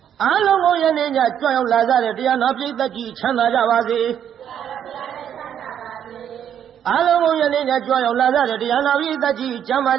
阿龙我爷人家专有来在的这样那边的几千大家把子。阿龙我爷人家专有来在的这样那边的几千大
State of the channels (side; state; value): left; quieter; 9.3 dB